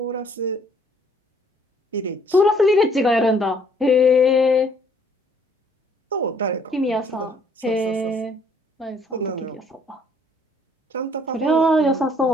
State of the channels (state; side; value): normal; both; correlation 0.62